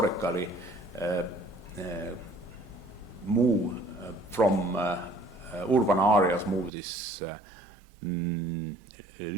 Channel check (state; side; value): drops out; left; at 6.7 s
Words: move from urban areas, move these